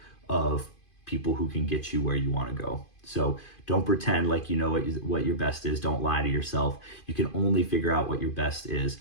of people who can get you where you want to go. So don't pretend like you know what your best is. Don't lie to yourself. You can only figure out what your best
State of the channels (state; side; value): late; right; 2.5 ms